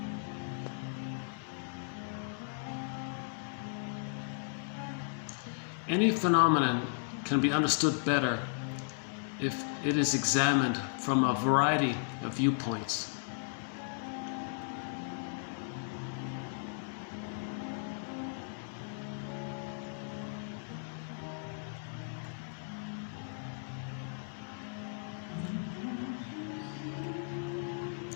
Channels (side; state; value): right; silent; digital silence